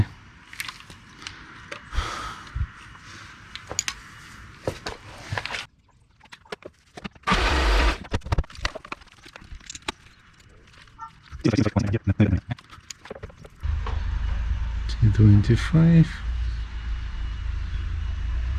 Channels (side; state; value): both; identical; correlation 1.00